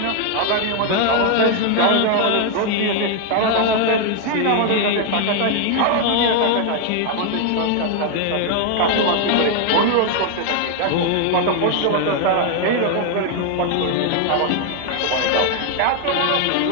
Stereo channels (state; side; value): different; both; correlation 0.00